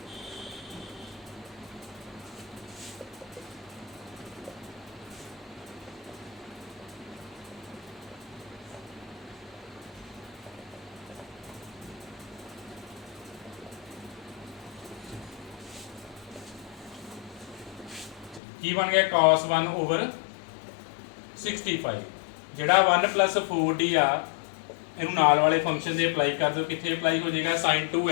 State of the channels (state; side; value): drops out; right; at 18.4 s